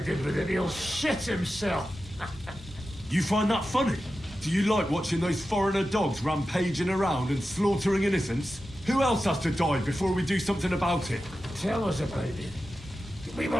did with it, he'll shit himself. You find that funny? Do you like watching those foreigner dogs rampaging around and slaughtering innocents? Who else has to die before we do something about it? Tell us about it. We were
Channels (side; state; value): both; normal; correlation 0.92